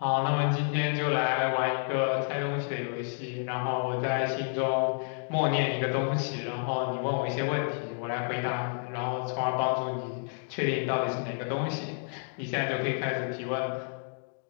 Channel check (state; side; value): silent; right; 58 dB below the other